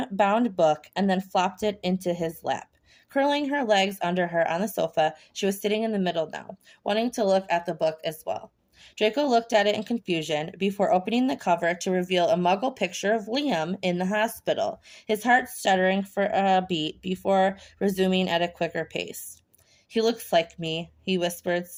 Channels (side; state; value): both; identical; correlation 1.00